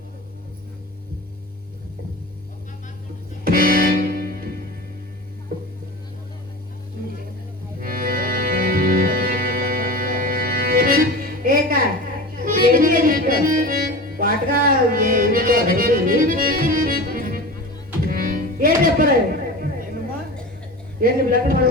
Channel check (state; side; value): normal; both; correlation 0.32